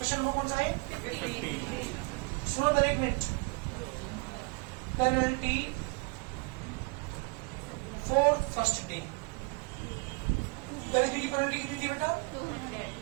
number कौन सा है? 50। सुनो पहले एक minute. Penalty for first day, पहले दिन की पेनल्टी कितनी थी बेटा?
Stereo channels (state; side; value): quieter; left; 28.6 dB